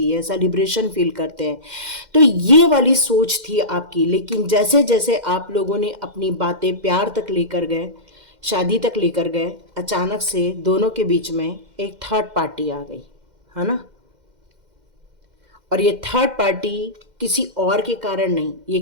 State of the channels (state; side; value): late; left; 2.1 ms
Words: है, सेलिब्रेशन फील करते हैं। तो ये वाली सोच थी आपकी। लेकिन जैसे जैसे आप लोगों ने अपनी बातें प्यार तक लेकर गए, शादी तक लेकर गए, अचानक से दोनों के बीच में एक थर्ड पार्टी आ गई, है ना। और ये थर्ड पार्टी किसी और के कारण नहीं,